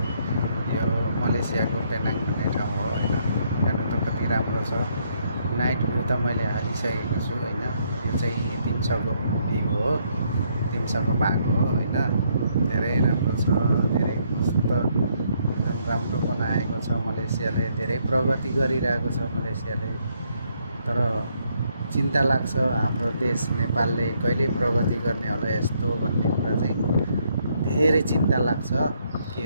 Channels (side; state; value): both; inverted; correlation -0.72